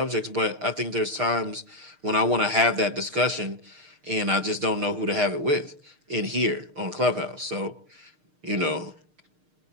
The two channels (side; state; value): left; late; 6.5 ms